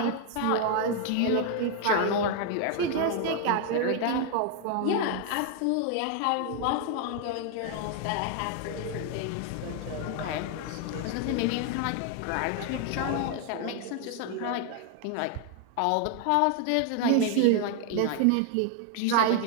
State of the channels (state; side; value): different; both; correlation 0.00